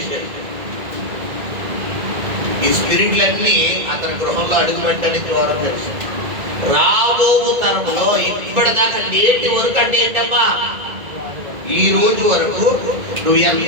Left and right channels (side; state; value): left; late; 1.9 ms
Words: ఈ స్పిరిట్లన్నీ అతని గృహంలో అడుగు పెట్టడానికి ద్వారం తెలుసు. రాబో తరములో ఇప్పటిదాకా నేటి వరకు అంటే ఏంటమ్మా, ఈ రోజు వరకు నువ్వు